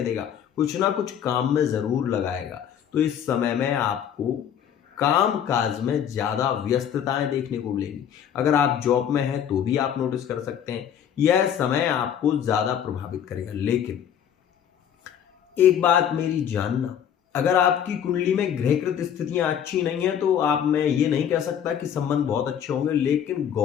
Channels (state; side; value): quieter; right; 9.0 dB